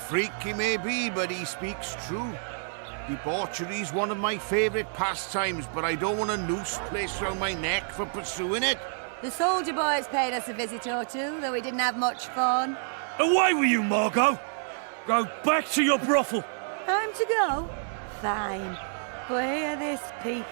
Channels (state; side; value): silent; left; 59 dB below the other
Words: he may be, but he speaks true. Debauchery's one of my favourite pastimes, but I don't want a noose placed round my neck for pursuing it. The soldier boys paid us a visit or two, though we didn't have much fun. Away with you, Margot! Go back to your brothel. Time to go? Fine. But hear this,